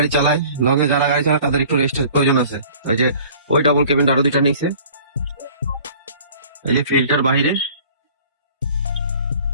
চালায়, লং এ যারা গাড়ি চালায় তাদের একটু রেস্টের প্রয়োজন আছে। ওই যে ওই ডাবল কেবিন আরো 2টা নিচে, এই যে ফিল্টার বাহিরে।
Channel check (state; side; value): inverted; both; correlation -0.49